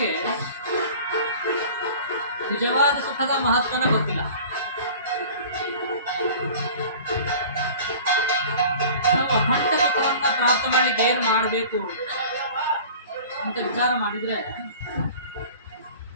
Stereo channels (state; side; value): inverted; both; correlation -0.42